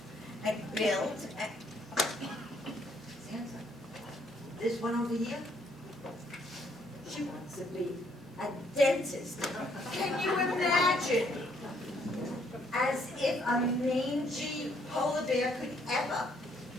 and build and... Santa, this one over here, she wants to be a dentist. Can you imagine? As if a mangy polar bear could ever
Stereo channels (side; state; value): both; normal; correlation 0.68